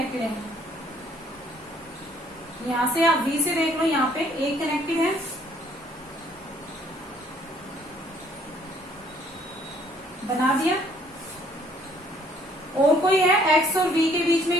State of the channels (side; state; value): both; normal; correlation 0.62